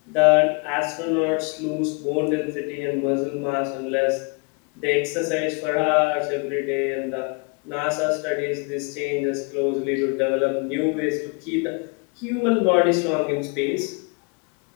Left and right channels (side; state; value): right; quieter; 32.5 dB